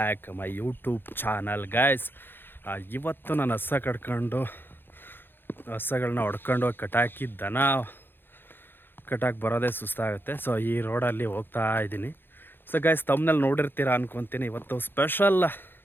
my YouTube channel guys. ಇವತ್ತು ನಾನು ಹಸಗಳನ್ನ ಹೊಡ್ಕೊಂಡು ಕಟಾಕಿ ದನ ಕಟಾಕಿ ಬರೋದೇ ಸುಸ್ತಾಗುತ್ತೆ. ಸೊ ಈ ರೋಡಲ್ಲಿ ಹೋಗ್ತಾ ಇದ್ದೀನಿ. ಸೊ ಗಾಯ್ಸ್, ತಮ್ಮನಲ್ಲಿ ನೋಡಿರ್ತೀರ ಅನ್ಕೊತೀನಿ. ಇವತ್ತು ಸ್ಪೆಷಲ್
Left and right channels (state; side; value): late; right; 0.10 ms